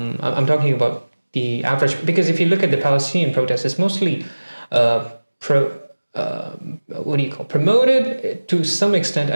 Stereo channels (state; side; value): inverted; both; correlation -1.00